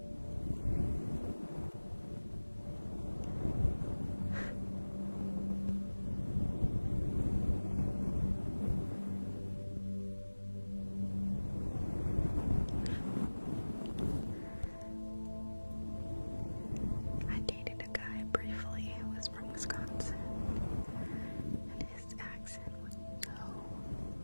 I dated a guy briefly who was from Wisconsin, and his accent was so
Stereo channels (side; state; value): both; inverted; correlation -1.00